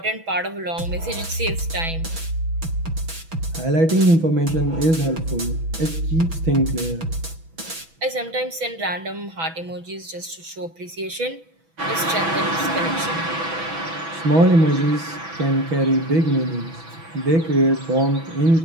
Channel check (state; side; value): late; left; 6.1 ms